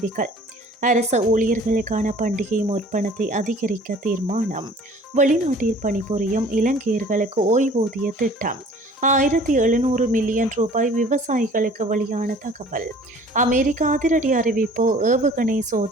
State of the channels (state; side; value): normal; both; correlation 0.50